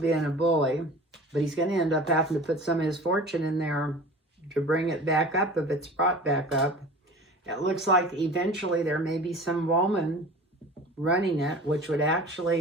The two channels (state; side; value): normal; both; correlation 0.40